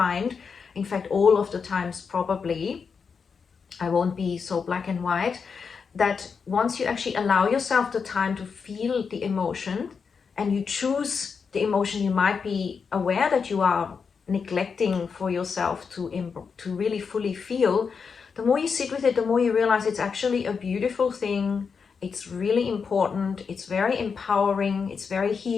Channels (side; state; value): right; quieter; 5.8 dB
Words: in fact all of the times probably, I won't be so black and white, that once you actually allow yourself the time to feel the emotion, and you choose the emotion you might be aware that you are neglecting for yourself to really fully feel, the more you sit with it, the more you realize it's actually a beautiful thing. It's really important. It's very empowering. It's very